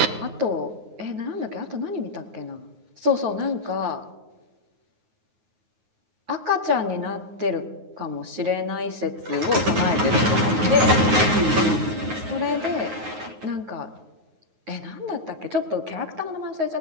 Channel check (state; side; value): late; left; 9.4 ms